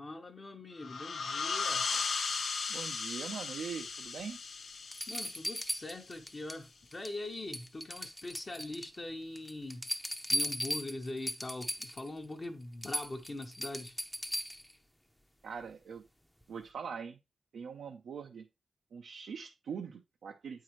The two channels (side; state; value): both; normal; correlation 0.91